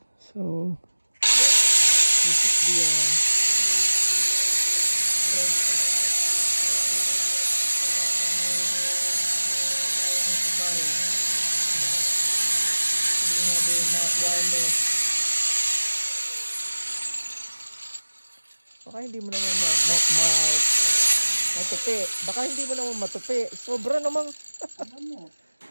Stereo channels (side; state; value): both; inverted; correlation -1.00